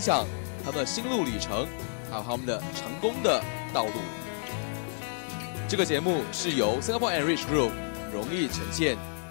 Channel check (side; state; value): right; silent; digital silence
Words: 他们的心路历程，还有他们的成功的道路。这个节目是由 Singapore Enrich Group 荣誉呈现。